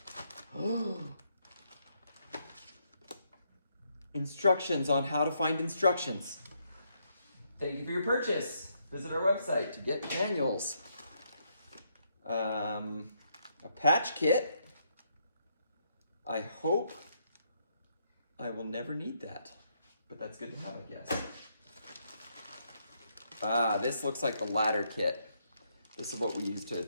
Oh! Instructions on how to find instructions. Thank you for your purchase. Visit our website to get manuals. A patch kit. I hope I will never need that, but that's good to have, I guess. This looks like the ladder kit. This is what we use to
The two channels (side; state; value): both; inverted; correlation -0.75